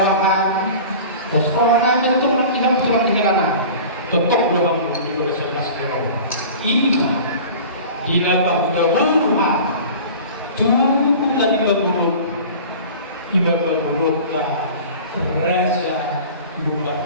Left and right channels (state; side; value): inverted; both; correlation -0.40